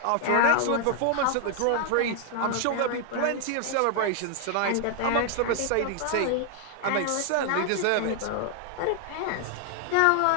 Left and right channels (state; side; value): different; both; correlation 0.00